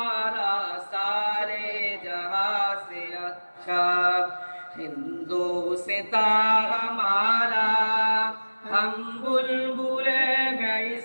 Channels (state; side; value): inverted; both; correlation -1.00